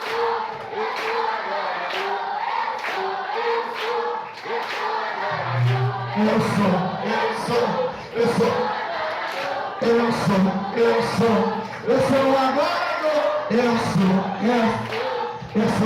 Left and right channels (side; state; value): both; identical; correlation 1.00